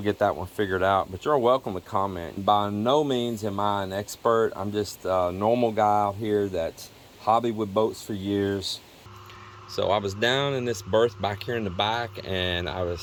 get that one figured out. But you're welcome to comment. By no means am I an expert. I'm just a normal guy out here that's hobbied with boats for years. So I was down in this berth back here in the back, and I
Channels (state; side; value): identical; both; correlation 1.00